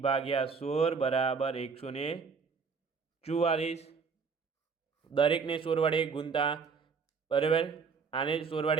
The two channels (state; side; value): quieter; left; 5.4 dB